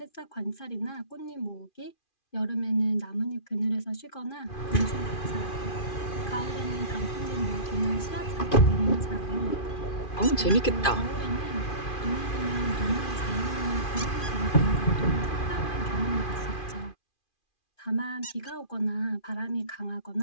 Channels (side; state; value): right; late; 2.4 ms